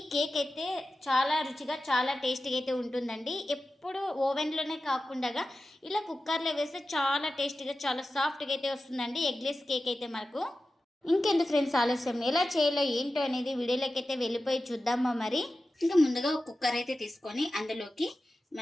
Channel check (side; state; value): both; normal; correlation 0.93